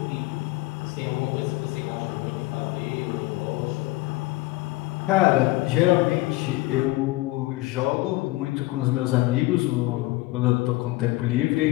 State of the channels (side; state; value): right; quieter; 19.9 dB